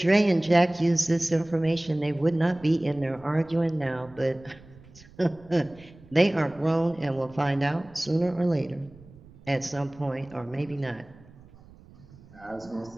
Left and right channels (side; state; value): right; noise; rumble, 23 dB below the sound